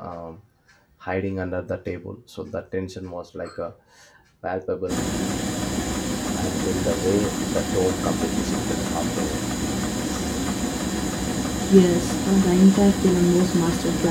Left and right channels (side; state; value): both; identical; correlation 1.00